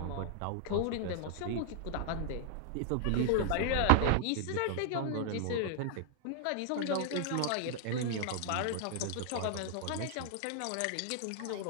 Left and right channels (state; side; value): different; both; correlation -0.01